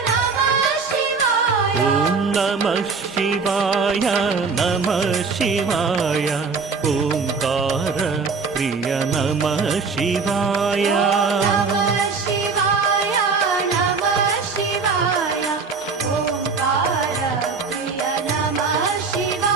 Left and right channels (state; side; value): quieter; left; 4.8 dB